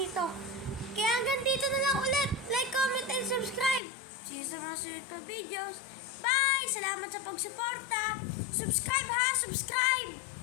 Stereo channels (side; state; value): right; drops out; at 3.8 s